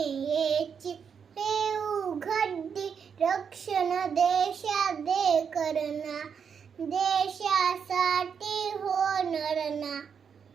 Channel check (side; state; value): left; quieter; 6.8 dB